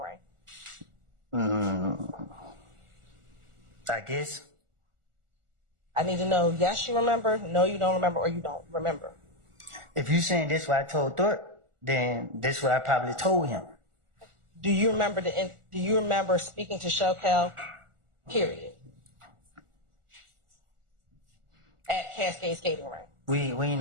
I guess. I need to know, yes, you remember, no, you don't remember, or you don't remember. If you saying this what I told Thorpe, then this is what I probably told him. Do you remember speaking to Shokel? Period. At Cascade Skating Rink. We ain't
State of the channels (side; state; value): left; late; 1.4 ms